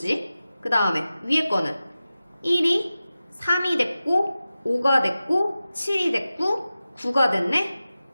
그 다음에 위에 거는 1이 3이 됐고 5가 됐고 7이 됐고 9가 됐네.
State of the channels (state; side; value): inverted; both; correlation -0.94